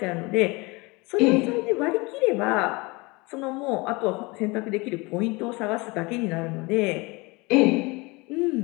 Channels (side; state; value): right; quieter; 25.5 dB